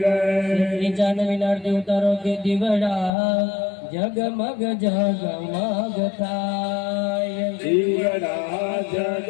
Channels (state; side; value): drops out; right; at 3.1 s